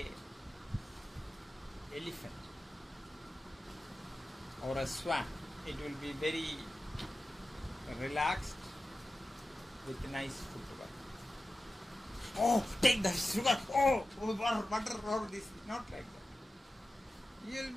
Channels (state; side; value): normal; both; correlation 0.94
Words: elephant or a swan. It will be very relaxed with nice footwork. Oh, take the sugar. Oh, butter, or this. Not like that. You will